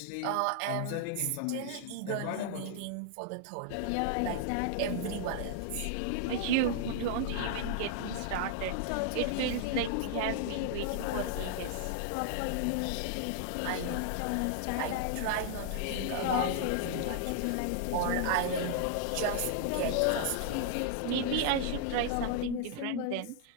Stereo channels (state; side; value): different; both; correlation -0.01